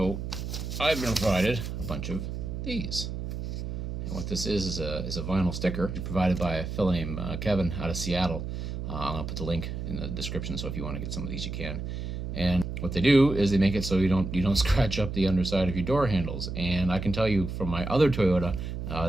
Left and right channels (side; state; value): right; noise; hum, 5 dB below the sound